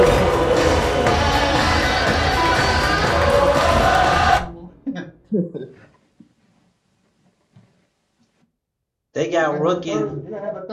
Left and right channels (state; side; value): identical; both; correlation 1.00